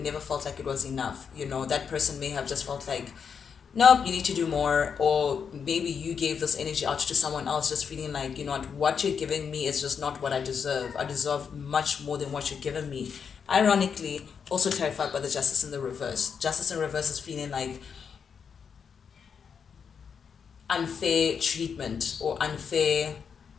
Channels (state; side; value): quieter; right; 6.6 dB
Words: never felt like it was enough. You know, that person may have just felt like, nope, you need to do more. Or maybe you gave this energy out to someone else, just feeling like, you know what you're giving me is just not what I deserve. I deserve much more than what you're giving me. Ironically, also clarified by the Justice in the reverse. Justice in reverse is feeling like unfair treatment or unfair,